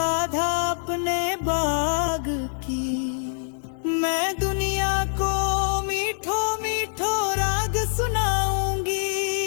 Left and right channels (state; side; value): silent; right; digital silence